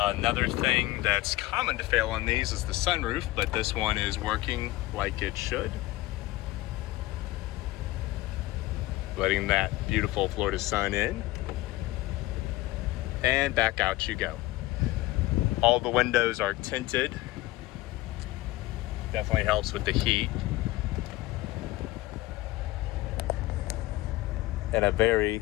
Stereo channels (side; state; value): right; quieter; 18.5 dB